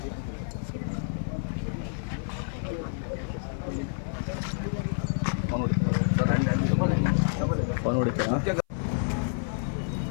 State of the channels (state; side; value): silent; right; 55 dB below the other